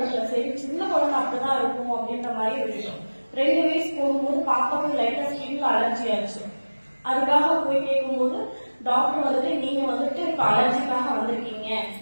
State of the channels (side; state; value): both; inverted; correlation -1.00